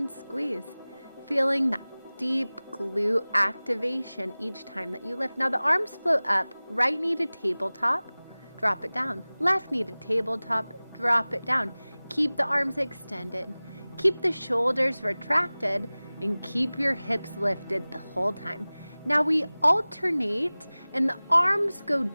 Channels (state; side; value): inverted; both; correlation -0.99